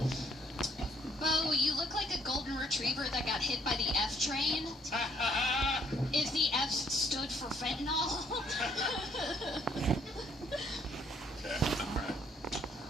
Bo, you look like a golden retriever that got hit by the F train. If the F stood for fentanyl. Okay, all right.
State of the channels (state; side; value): normal; both; correlation 0.66